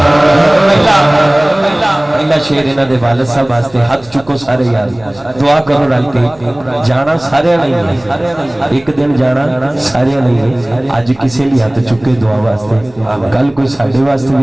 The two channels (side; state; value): right; noise; hum, 27 dB below the sound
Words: پہلا شعر انہاں دے والد صاحب واسطے ہاتھ چکو سارے یار دعا کرو رل کے جانا سارے نہیں ہے ایک دن جانا سارے نہیں ہے اج کسی لیے ہاتھ چکے دعا واسطے کل کوئی ساڈے واسطے